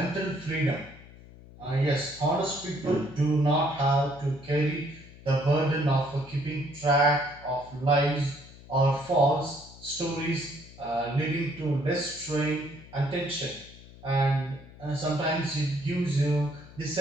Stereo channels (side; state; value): left; noise; hum, 20 dB below the sound